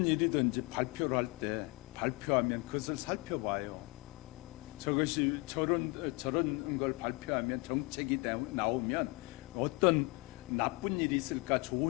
일이든지 발표를 할 때 발표하면 그것을 살펴봐요. 저것이 저런 걸 발표하면 정책이 나오면 어떤 나쁜 일이 있을까,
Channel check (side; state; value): right; quieter; 26.3 dB